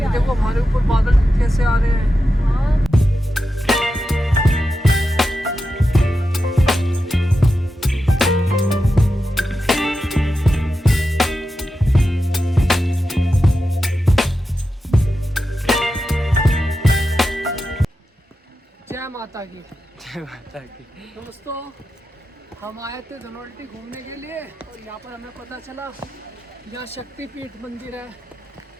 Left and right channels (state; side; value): normal; both; correlation 0.90